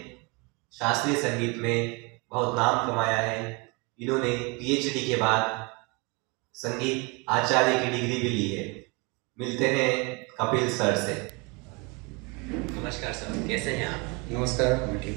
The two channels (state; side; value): quieter; left; 29.2 dB